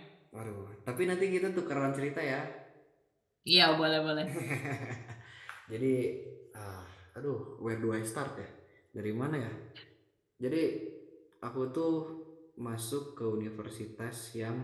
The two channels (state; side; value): identical; both; correlation 1.00